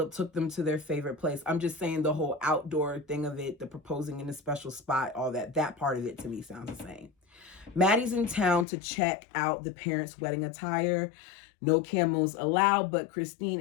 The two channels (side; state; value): right; drops out; at 8.7 s